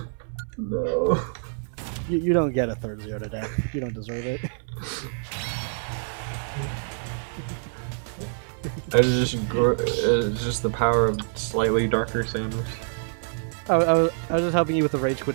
No. you don't get a third zero to death. You don't deserve it. It's just the power of slightly darker Samus. I was just helping you with the rage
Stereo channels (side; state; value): left; silent; 61 dB below the other